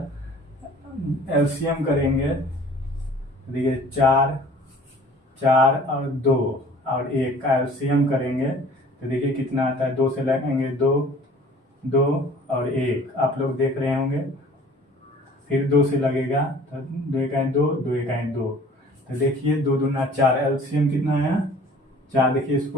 एलसीएम करेंगे, देखिए 4 और 2 और 1 का एलसीएम करेंगे तो देखिए कितना आता है, 2 से लगेंगे 2 और 1, आप लोग देख रहे होंगे। फिर 2 से लगेगा तो 2 1 2, 2 1 2, तो देखिए 2 दूना 4, एलसीएम कितना आया 4। देखिए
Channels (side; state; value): both; normal; correlation 0.50